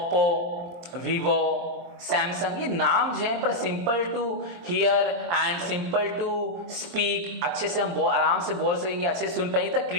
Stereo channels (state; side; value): late; left; 23 ms